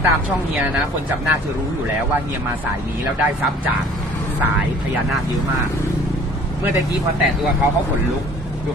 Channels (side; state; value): both; normal; correlation 0.51